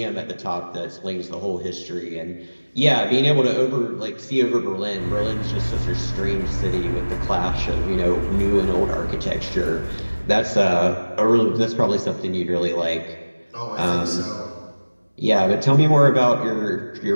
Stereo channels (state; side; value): inverted; both; correlation -1.00